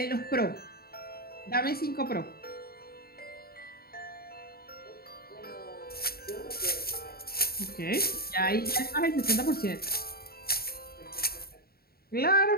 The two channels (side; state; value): right; late; 0.45 ms